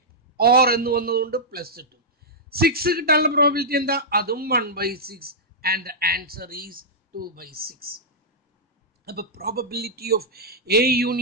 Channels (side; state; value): both; normal; correlation -0.11